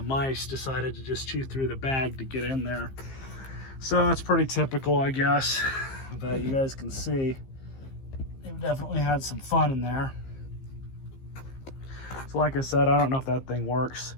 mice decided to just chew through the bag to get in there. So it's pretty typical, I guess, that you guys can see. They've definitely had some fun in there. So like I said, I don't know if that thing works.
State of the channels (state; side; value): late; right; 15 ms